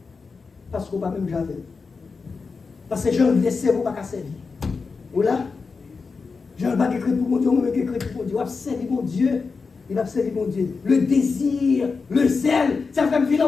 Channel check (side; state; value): right; quieter; 4.7 dB